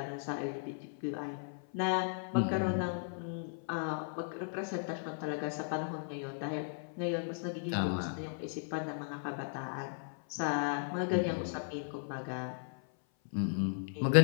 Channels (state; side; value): silent; right; 54 dB below the other